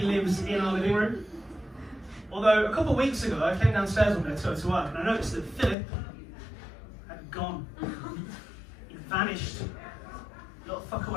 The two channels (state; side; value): drops out; right; at 5.8 s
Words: lives in our living room. Although, a couple of weeks ago, I came downstairs one day to go to work, and I noticed that Philip had gone. He vanished. Little fucker